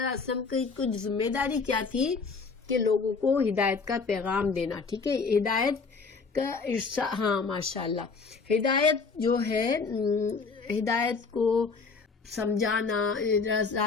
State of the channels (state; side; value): quieter; right; 4.7 dB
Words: علیہ وسلم کی کچھ ذمہ داری کیا تھی کہ لوگوں کو ہدایت کا پیغام دینا، ٹھیک ہے۔ ہدایت کا ہاں ماشاء اللہ، ہدایت جو ہے، ہدایت کو سمجھانا،